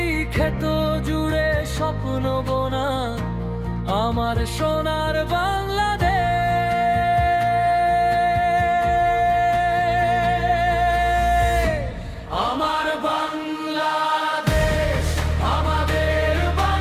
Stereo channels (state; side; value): identical; both; correlation 1.00